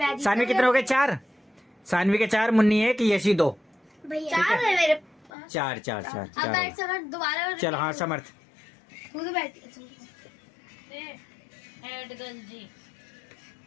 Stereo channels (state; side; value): drops out; right; at 5.3 s